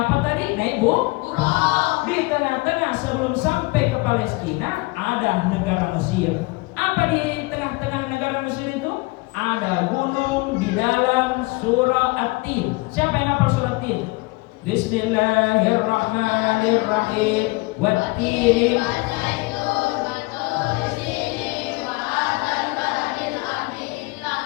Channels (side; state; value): right; quieter; 24.5 dB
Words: apa tadi? Naik buruk. Di tengah-tengah sebelum sampai ke Palestina ada negara Mesir. Apa di tengah-tengah negara Mesir itu? Ada gunung di dalam surah At-Tin. Siapa yang hafal surah At-Tin? Bismillahirrahmanirrahim. Wat-Tin